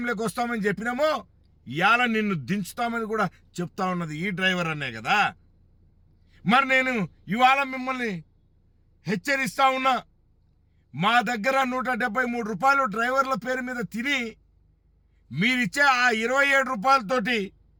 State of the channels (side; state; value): both; identical; correlation 1.00